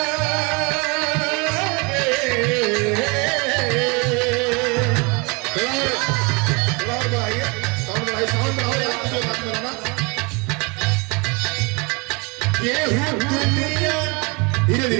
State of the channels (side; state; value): left; quieter; 29.6 dB